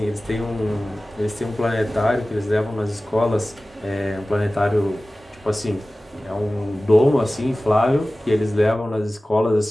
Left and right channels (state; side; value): normal; both; correlation 0.97